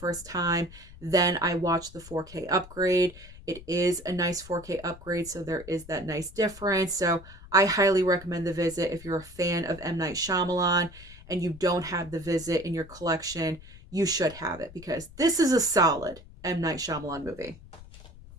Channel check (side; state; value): left; noise; rumble, 18 dB below the sound